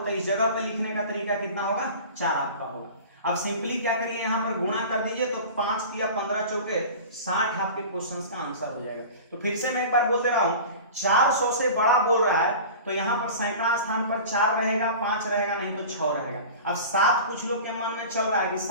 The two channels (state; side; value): inverted; both; correlation -0.37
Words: इस जगह पे लिखने का तरीका कितना होगा? 4 आपका होगा। अब सिंपली क्या करिए, यहाँ पर गुणा कर दीजिए तो 5 तिया 15 चौके 60 आपके क्वेश्चन का आंसर हो जाएगा। तो फिर से मैं एक बार बोल दे रहा हूँ, 400 से बड़ा बोल रहा है तो यहाँ पर सैकड़ा स्थान पर 4 रहेगा, 5 रहेगा, नहीं तो 6 रहेगा। अब 7 कुछ लोग के मन में चल रहा है कि